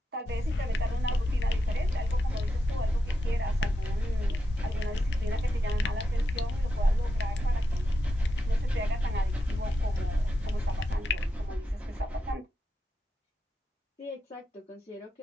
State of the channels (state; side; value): normal; both; correlation 0.87